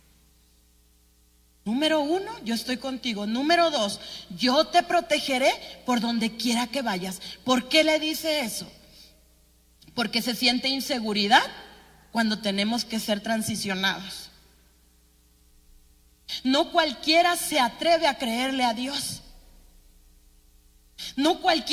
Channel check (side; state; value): both; identical; correlation 1.00